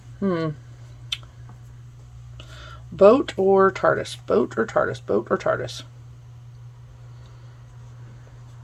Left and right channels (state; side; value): identical; both; correlation 1.00